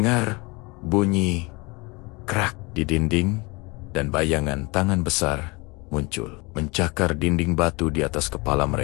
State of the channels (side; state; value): right; quieter; 26.7 dB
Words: bunyi krak di dinding dan bayangan tangan besar muncul, mencakar dinding batu di atas kepala